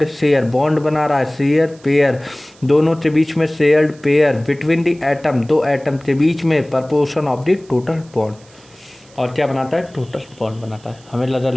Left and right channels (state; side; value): noise; right; hiss, 27 dB below the sound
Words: share, bond बना रहा है, शेयर पेयर, दोनों के बीच में shared pair, between the atom, दो एटम के बीच में, proportion of the total bond. और क्या बनाता है, टोटल बॉन्ड बनाता है। हमें लगा